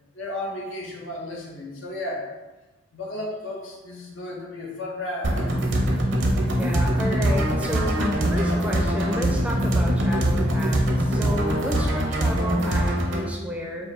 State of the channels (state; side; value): normal; both; correlation 0.78